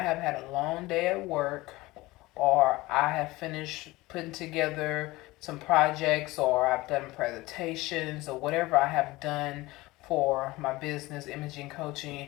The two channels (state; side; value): quieter; right; 20.1 dB